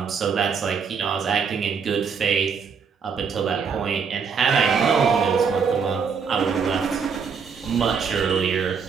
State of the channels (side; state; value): left; quieter; 6.1 dB